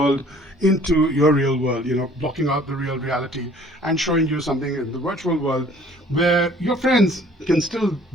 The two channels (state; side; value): normal; both; correlation 0.54